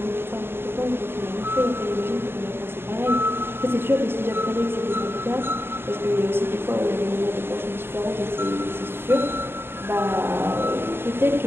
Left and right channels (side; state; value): left; late; 0.11 ms